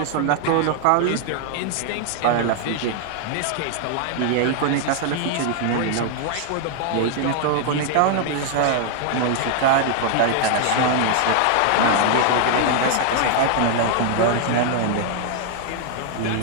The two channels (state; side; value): different; both; correlation 0.00